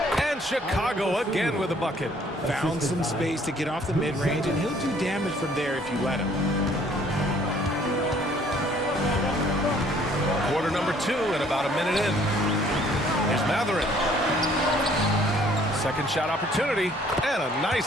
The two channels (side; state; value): both; normal; correlation 0.59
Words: And Chicago again with a bucket. Found some space to get off the mid-range, and he'll do damage from there if you let him. Quarter number 2 and about a minute in. Here's Mathurin. Second shot opportunity. And a nice